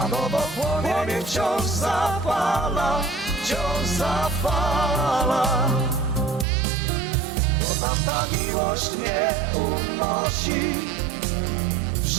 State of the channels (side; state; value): left; drops out; at 6.5 s